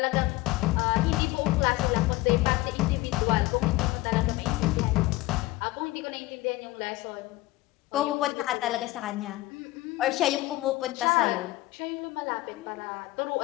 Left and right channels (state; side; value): quieter; right; 19.0 dB